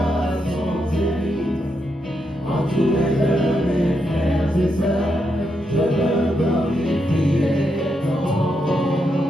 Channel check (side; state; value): both; normal; correlation 0.82